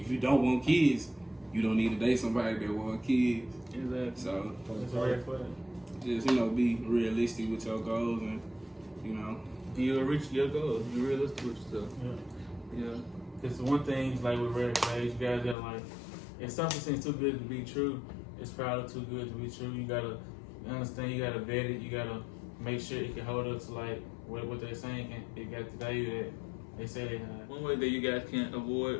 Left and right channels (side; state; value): right; drops out; at 15.6 s